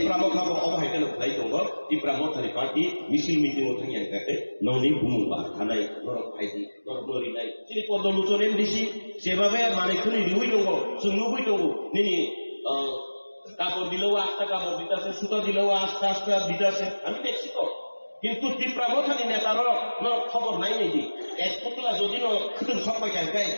অবহাইতেন খাই দङ তীব্রামথানি পার্টি মিছিল মিটিং থামিয়া গায় ননি বুমুবা থানাই নরক ফাইদি নরক নরি নাই যিনি পদ্মলোচন এমডিসি সেভাবে মানে খুনি রিউই দङ সুনুবই দङ নিনি কাপড় দিলেও আস্তা কাপড় দিতেছে সুতা দিলেও আস্তে আস্তে দিতেছে আমি দেখছি তো কিন্তু তীব্রামথানি নেতার খবর নাই নেই এক পুতলা যদি খুতুন সবাই গাই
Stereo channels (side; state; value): both; inverted; correlation -1.00